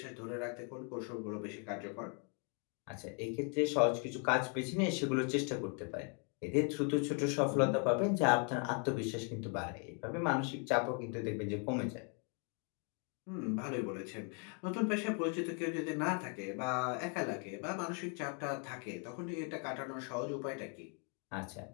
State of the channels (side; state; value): right; quieter; 39.2 dB